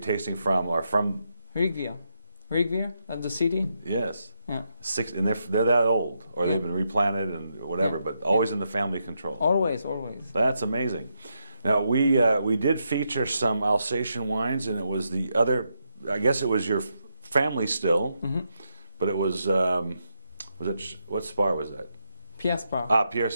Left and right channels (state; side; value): inverted; both; correlation -0.82